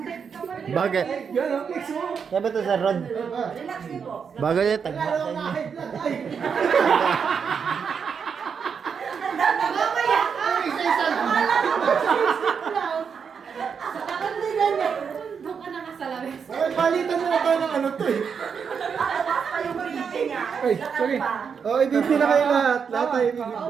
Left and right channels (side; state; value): left; quieter; 6.5 dB